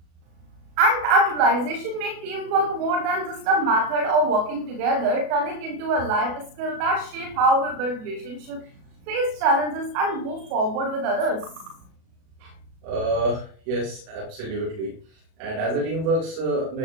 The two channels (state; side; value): late; left; 37 ms